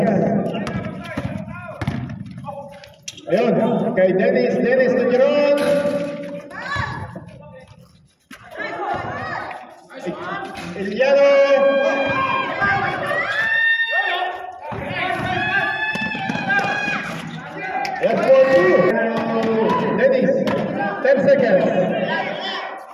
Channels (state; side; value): identical; both; correlation 1.00